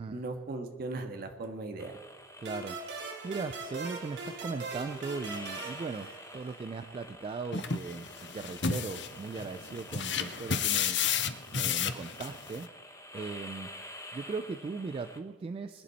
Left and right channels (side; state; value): both; normal; correlation 0.34